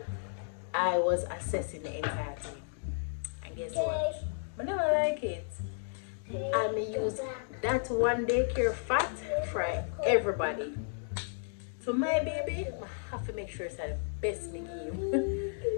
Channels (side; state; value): right; silent; digital silence